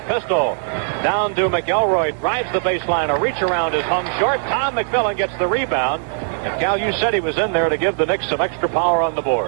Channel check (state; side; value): silent; left; 62 dB below the other